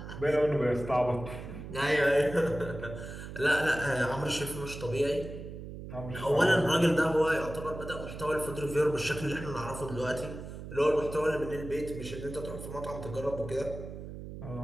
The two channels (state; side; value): noise; right; hum, 10 dB below the sound